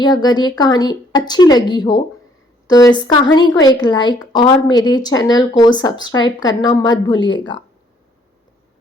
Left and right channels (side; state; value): both; normal; correlation 0.64